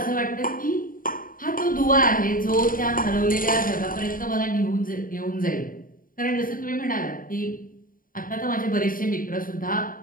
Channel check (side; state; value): right; late; 0.41 ms